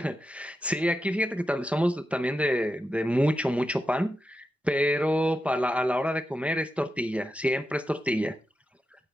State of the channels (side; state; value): both; normal; correlation 0.89